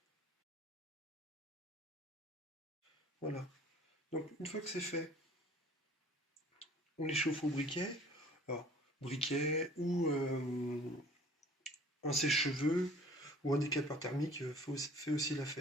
Voilà. Donc une fois que c'est fait, on les chauffe au briquet. Alors, briquet ou un sèche-cheveux ou un décapeur thermique fait aussi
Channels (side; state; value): both; normal; correlation 0.51